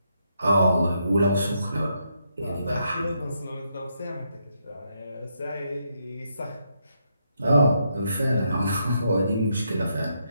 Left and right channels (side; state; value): both; inverted; correlation -0.78